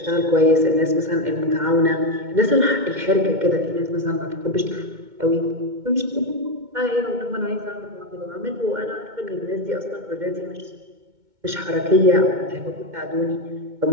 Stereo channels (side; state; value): left; late; 2.2 ms